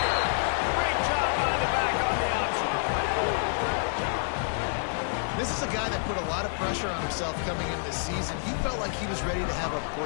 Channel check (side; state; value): right; silent; 59 dB below the other